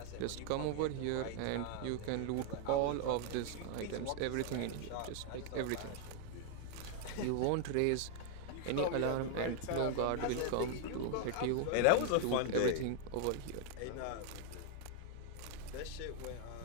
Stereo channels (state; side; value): different; both; correlation 0.00